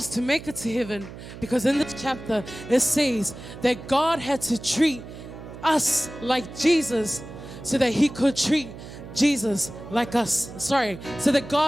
to make it to heaven, because in this chapter it says that God had to treat us like Jesus so that he could treat Jesus like us. So that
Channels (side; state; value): right; noise; hum, 14 dB below the sound